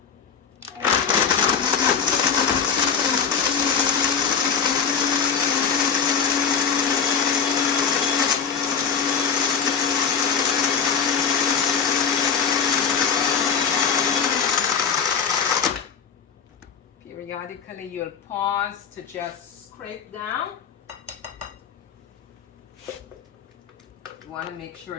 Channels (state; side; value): quieter; right; 6.9 dB